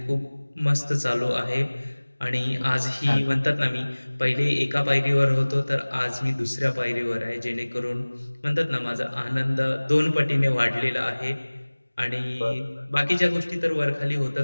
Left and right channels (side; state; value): both; inverted; correlation -1.00